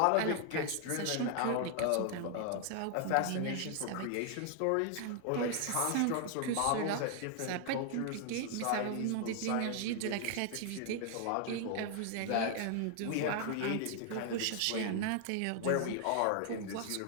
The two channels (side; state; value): both; different; correlation 0.00